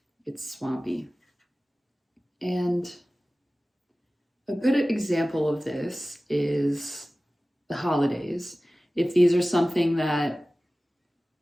It's swampy. And a good example of this is the holidays. If these are something that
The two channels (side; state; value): both; normal; correlation 0.97